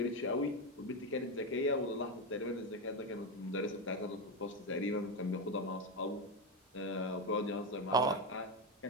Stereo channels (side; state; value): both; normal; correlation 0.11